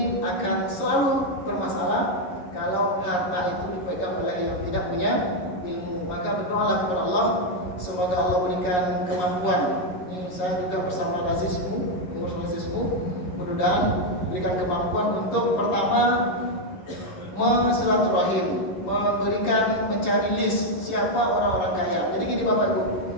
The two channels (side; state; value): right; late; 11 ms